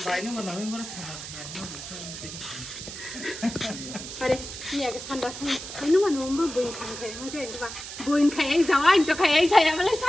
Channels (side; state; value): right; noise; hiss, 10 dB below the sound